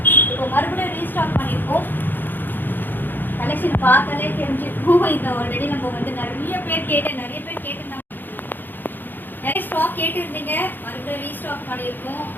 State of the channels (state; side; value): late; right; 0.091 ms